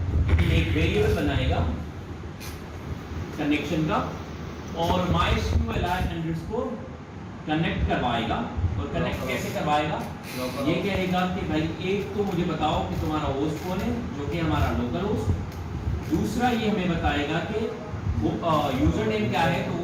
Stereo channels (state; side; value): identical; both; correlation 1.00